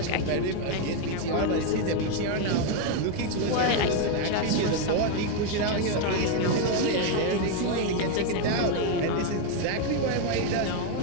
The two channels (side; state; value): both; different; correlation 0.01